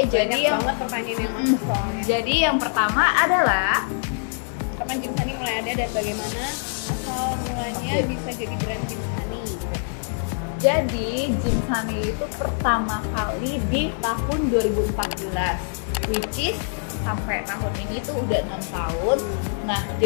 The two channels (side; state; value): right; silent; digital silence